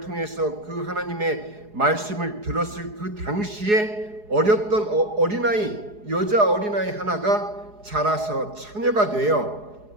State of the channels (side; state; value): left; late; 4.8 ms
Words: 그 하나님의 말씀을 들었을 그 당시에 어렸던 어린아이, 여자 어린아이 하나가 자라서 처녀가 되어